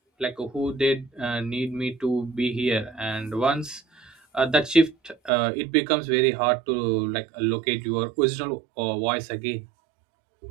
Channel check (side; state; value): left; drops out; at 5.3 s